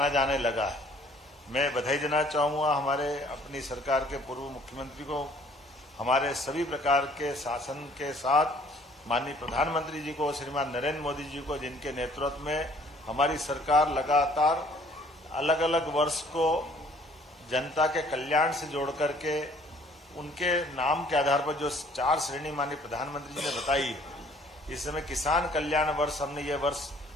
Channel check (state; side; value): normal; both; correlation 0.57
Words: जाने लगा है। मैं बधाई देना चाहूंगा हमारे अपनी सरकार के पूर्व मुख्यमंत्री को, हमारे सभी प्रकार के शासन के साथ माननीय प्रधानमंत्री जी को, श्रीमान नरेंद्र मोदी जी को, जिनके नेतृत्व में हमारी सरकार लगातार अलग अलग वर्ष को जनता के कल्याण से जोड़ करके उनके नाम के आधार पर जो 4 श्रेणी माननीय प्रधानमंत्री जी ने बताई, इस समय किसान कल्याण वर्ष हमने ये वर्ष